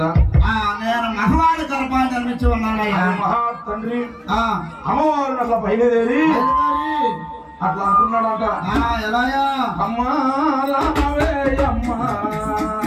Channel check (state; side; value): identical; both; correlation 1.00